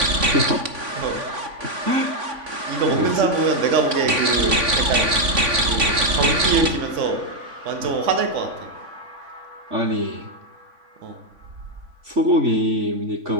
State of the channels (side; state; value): left; late; 3.5 ms